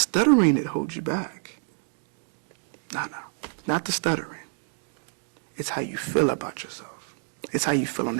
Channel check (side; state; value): left; silent; digital silence